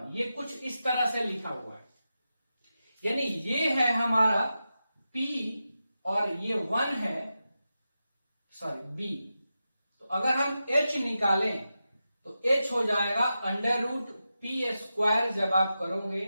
ये कुछ इस तरह से लिखा हुआ है, यानी ये है हमारा p और ये 1 है b। तो अगर हम h निकालें तो h हो जाएगा अंडर रूट पी स्क्वायर, जब आप करोगे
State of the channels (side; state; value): both; inverted; correlation -0.91